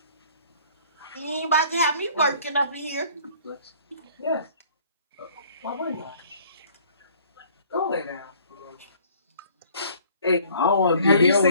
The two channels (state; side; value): inverted; both; correlation -0.55